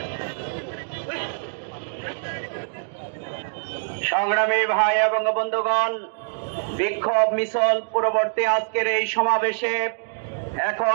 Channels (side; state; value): left; silent; digital silence